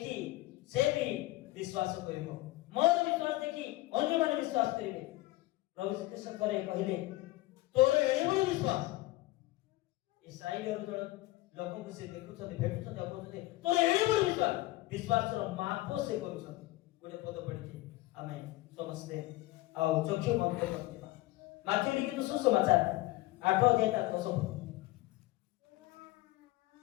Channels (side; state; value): right; quieter; 18.4 dB